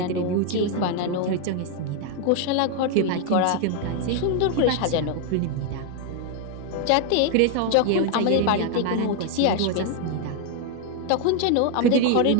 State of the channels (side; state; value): both; different; correlation 0.01